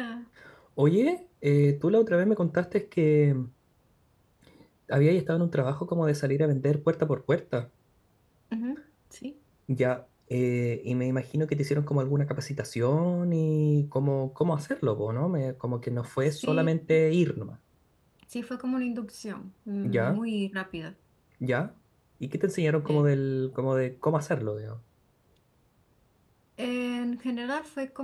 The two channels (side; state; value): both; identical; correlation 1.00